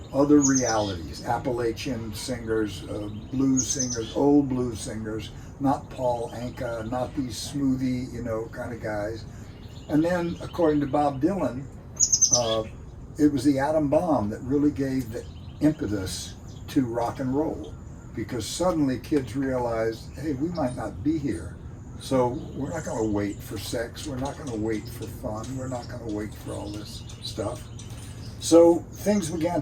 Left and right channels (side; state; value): both; identical; correlation 1.00